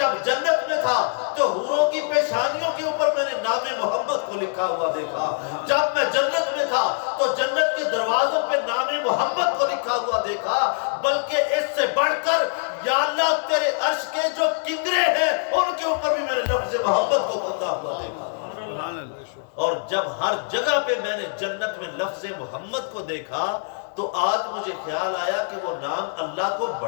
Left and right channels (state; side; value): silent; right; digital silence